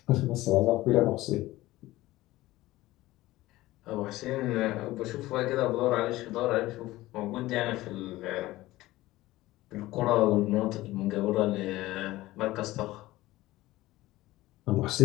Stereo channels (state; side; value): quieter; right; 17.5 dB